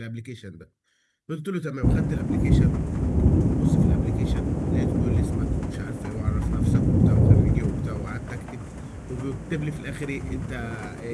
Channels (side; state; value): both; identical; correlation 1.00